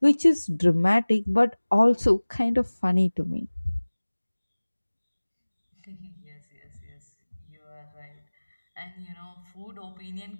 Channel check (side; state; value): both; inverted; correlation -1.00